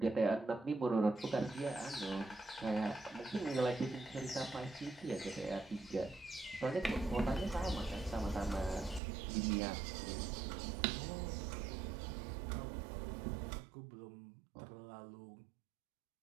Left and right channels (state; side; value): drops out; left; at 9.0 s